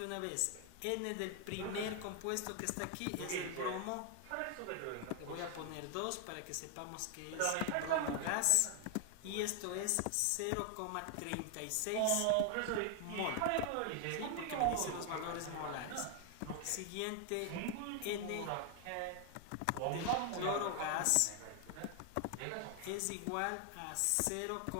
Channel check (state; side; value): different; both; correlation 0.00